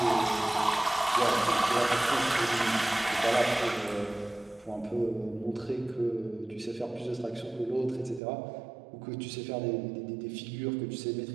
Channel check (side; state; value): left; drops out; at 8.2 s